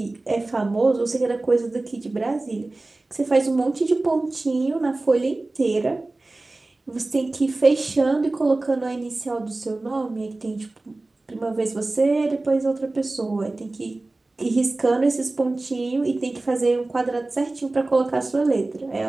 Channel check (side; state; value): left; quieter; 3.1 dB